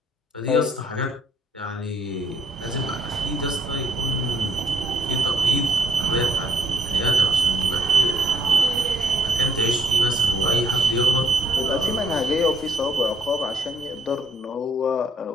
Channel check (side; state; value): both; normal; correlation 0.66